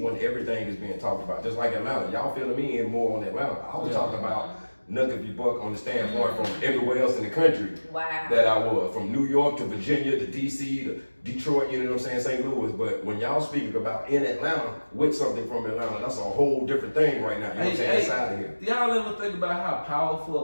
everything is being talked about. Just like Atlanta, y'all feeling me in more on Atlanta. I was talking about Nuck if you buck on the standpoint from everywhere else in the country that I was. From New York to Virginia to DC to Detroit, you know what I'm saying, St. Louis. But when y'all speaking about in Atlanta with something from Atlanta, that's a whole different thing right now. You know what I'm saying? Inside of here. Do y'all ever think about how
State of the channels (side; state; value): both; inverted; correlation -1.00